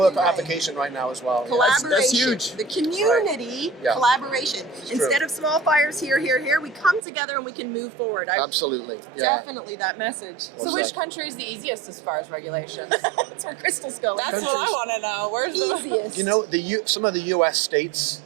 exactly on right. application right now as well. Collaboration. That's huge. The community Yeah. collaboration. It's Instead true. of small fires here, we come together and we can move forward. Absolutely. Yeah. Definitely that message. So which country is the easiest as far as regulations? That's where Crystal's going. That's what I want to know. Where's the Easiest. You know, some of the U.S. states.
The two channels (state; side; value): drops out; left; at 7.0 s